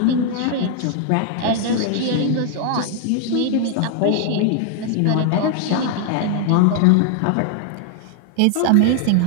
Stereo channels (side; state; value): both; different; correlation 0.00